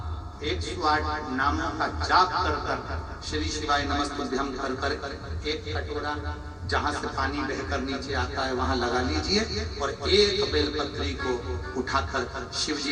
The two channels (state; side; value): identical; both; correlation 1.00